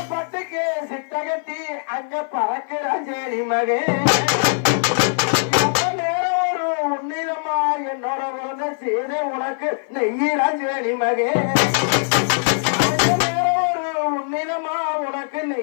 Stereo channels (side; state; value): right; silent; 56 dB below the other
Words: பட்டுக்கு சிட்டகட்டி அங்க பறக்கிற சேரி மகே நேரம் ஒரு உன்னிதமா என்னோட உறந்த செய்த உனக்கு நெய்யிறான் சேரி மகே நேரம் ஒரு உன்னிதமா உனக்கு